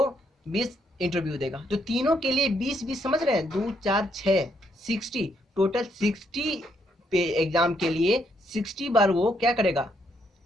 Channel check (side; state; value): both; normal; correlation 0.74